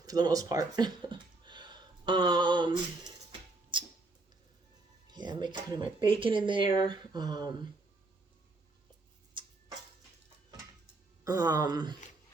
for the most part. Yeah, I'm putting my bacon in there. Let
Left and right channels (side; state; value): left; quieter; 3.2 dB